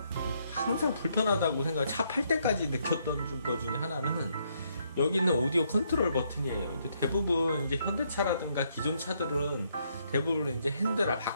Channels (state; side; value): inverted; both; correlation -0.73